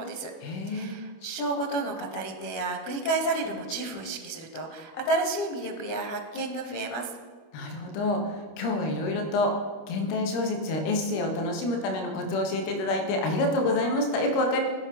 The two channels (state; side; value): late; right; 25 ms